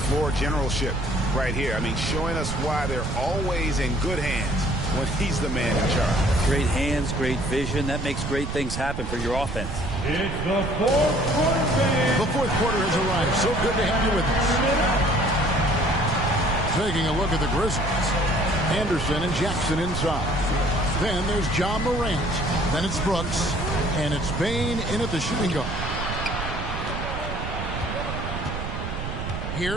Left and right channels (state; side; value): noise; right; rumble, 5 dB below the sound